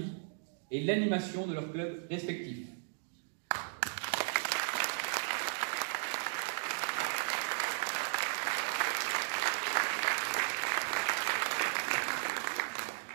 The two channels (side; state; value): left; silent; digital silence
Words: et l'animation de leurs clubs respectifs.